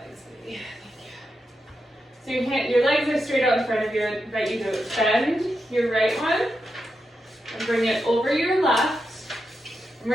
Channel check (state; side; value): normal; both; correlation 0.87